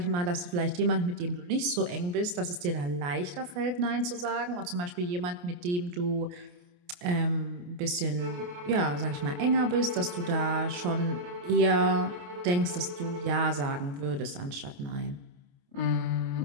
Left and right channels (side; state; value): left; late; 28 ms